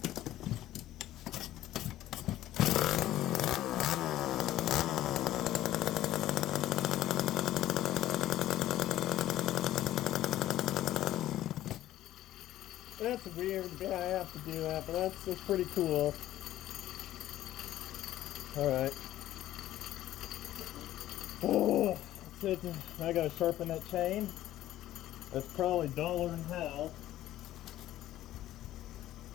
That's weird. Yeah, I have to do that, but that's pretty cool. All right. Oh. I gotta sharpen that chain. That's probably duller than hell.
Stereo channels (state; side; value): quieter; right; 13.8 dB